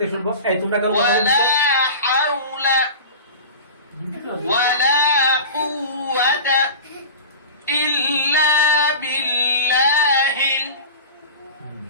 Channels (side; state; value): both; inverted; correlation -0.33